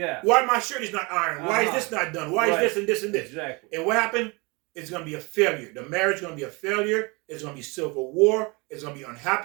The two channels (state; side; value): quieter; left; 27.9 dB